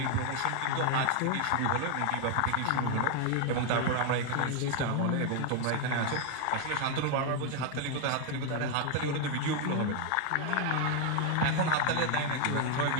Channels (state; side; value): different; both; correlation 0.01